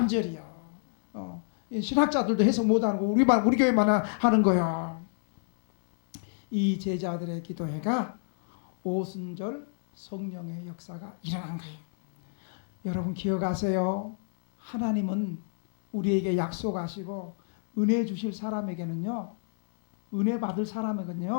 신학자들도 해석 못하는 거 우리 교회만 하는 거야. 이 제자들의 기도회가 오순절 성령의 역사가 일어난 거예요. 여러분 기억하세요. 하나님은 우리에게 약속하시고 은혜 주실 사람에게는요, 은혜 받을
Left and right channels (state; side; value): silent; right; digital silence